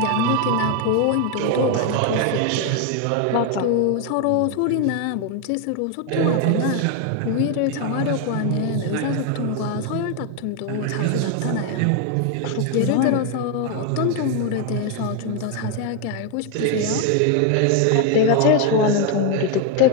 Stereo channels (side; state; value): both; different; correlation 0.01